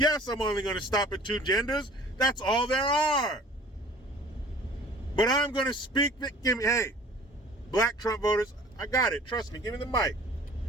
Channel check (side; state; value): both; normal; correlation 0.49